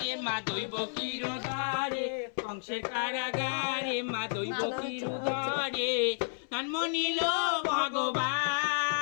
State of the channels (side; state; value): right; silent; 57 dB below the other